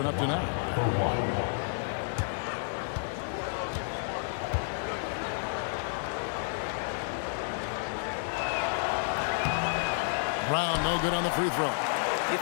up to now. Brown, no good on the free throw. You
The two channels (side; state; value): right; silent; digital silence